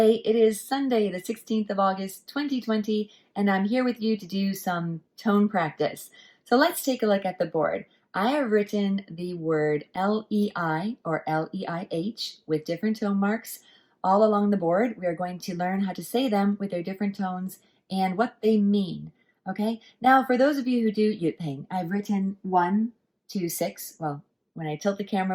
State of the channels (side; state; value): both; identical; correlation 1.00